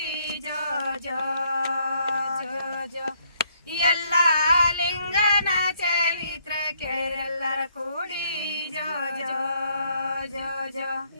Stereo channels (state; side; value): inverted; both; correlation -0.70